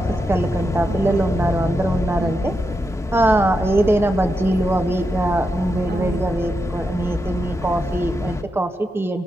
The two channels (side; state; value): both; normal; correlation 0.86